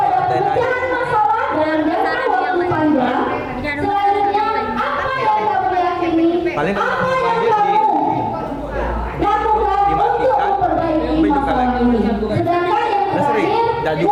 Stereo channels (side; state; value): both; identical; correlation 1.00